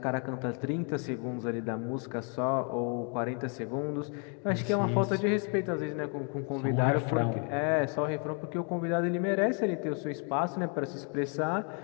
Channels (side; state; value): right; quieter; 39.1 dB